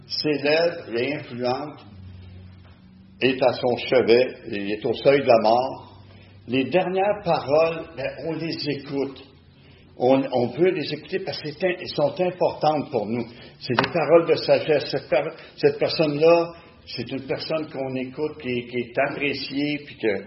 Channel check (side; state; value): both; identical; correlation 1.00